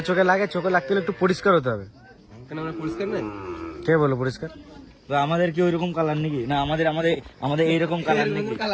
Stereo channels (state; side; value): identical; both; correlation 1.00